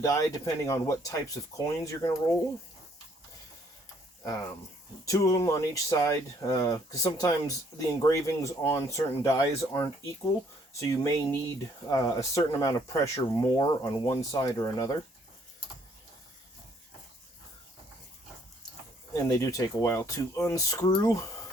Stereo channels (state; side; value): normal; both; correlation 0.65